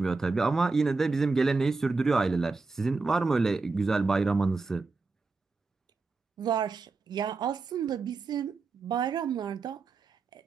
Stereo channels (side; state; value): left; quieter; 4.0 dB